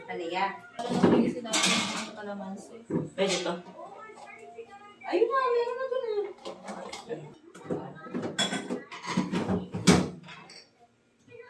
Halika. Pwede to. Ayun na, meron na doon.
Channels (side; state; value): both; identical; correlation 1.00